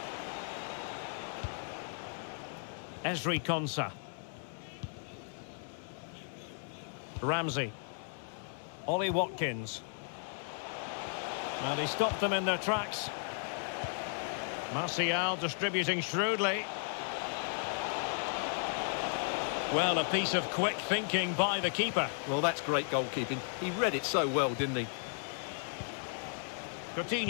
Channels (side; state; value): right; silent; digital silence